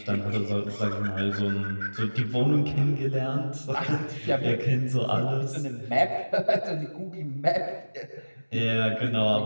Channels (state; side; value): inverted; both; correlation -1.00